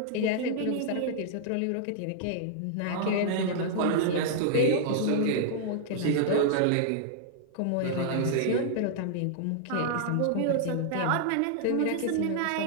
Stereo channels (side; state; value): both; different; correlation -0.01